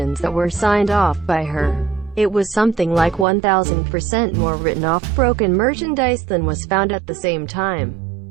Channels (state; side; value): drops out; left; at 3.2 s